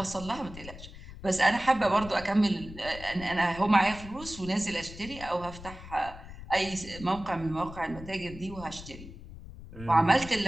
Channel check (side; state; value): left; noise; rumble, 14 dB below the sound